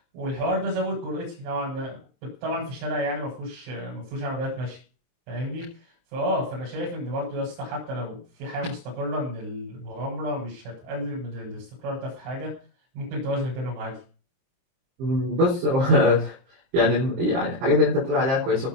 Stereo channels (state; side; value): late; left; 23 ms